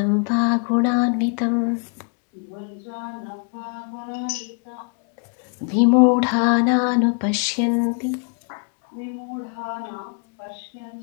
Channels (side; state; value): right; quieter; 39.5 dB